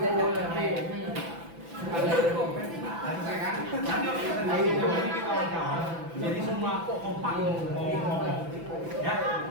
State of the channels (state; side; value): late; left; 6.0 ms